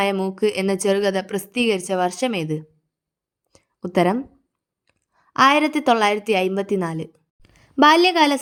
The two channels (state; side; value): identical; both; correlation 1.00